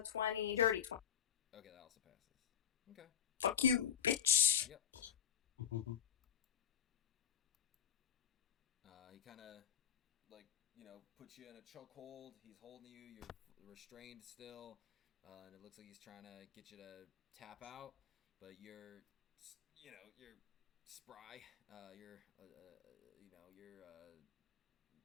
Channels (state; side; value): quieter; right; 8.9 dB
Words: 20, dirty 20. Okay, that also passes. Okay. Fuck you, bitch. Yep. He kind of like puts you in a chokehold. He's holding you. You're restrained still, and it looks like he's trying to get you to tap out, but you're spry. You're